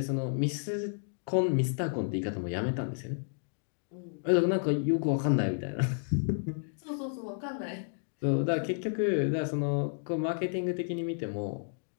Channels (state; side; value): silent; right; digital silence